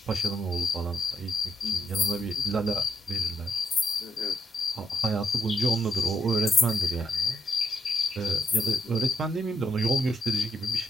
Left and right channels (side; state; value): both; normal; correlation 0.76